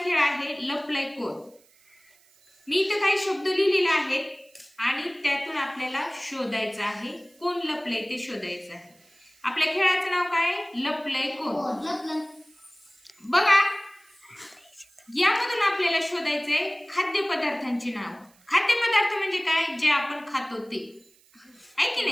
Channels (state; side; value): noise; right; hiss, 30 dB below the sound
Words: खेळ आहे लपलय कोण. मी इथे काही शब्द लिहिलेले आहेत आणि त्यातून आपल्याला शोधायचं आहे कोण लपलय ते शोधायचं आहे. आपल्या खेळाचं नाव काय आहे? लपलय कोण. बघा, यामधून आपल्याला शोधायचंय खाद्यपदार्थांची नाव. खाद्यपदार्थ म्हणजे काय? जे आपण खातो ते, आहे की